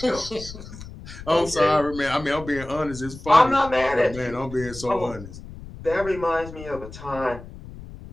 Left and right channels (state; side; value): noise; left; rumble, 14 dB below the sound